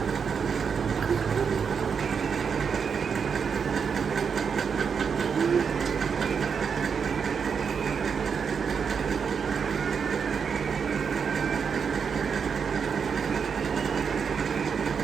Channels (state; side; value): quieter; left; 6.4 dB